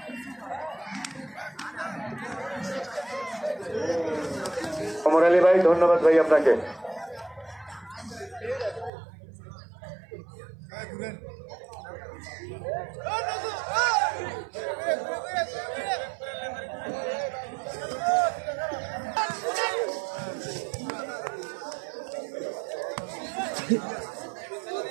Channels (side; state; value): left; drops out; at 8.9 s